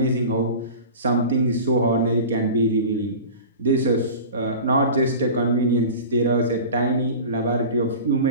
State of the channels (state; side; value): inverted; both; correlation -0.35